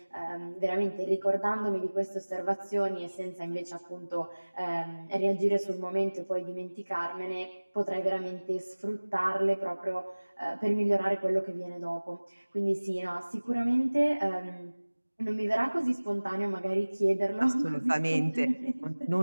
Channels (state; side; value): inverted; both; correlation -1.00